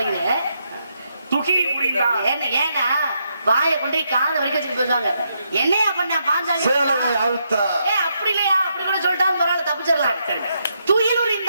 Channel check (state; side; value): inverted; both; correlation -0.80